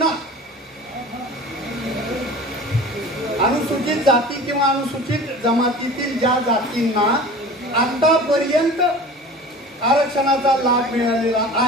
अनुसूचित जाती किंवा अनुसूचित जमातीतील ज्या जातींना आतापर्यंत आरक्षणाचा लाभ मिळालेला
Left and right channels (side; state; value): both; normal; correlation 0.39